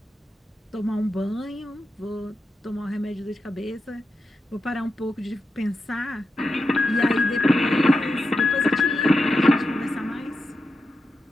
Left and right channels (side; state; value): both; normal; correlation 0.88